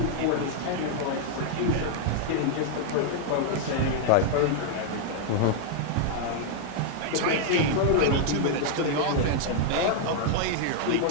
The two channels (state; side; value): different; both; correlation -0.01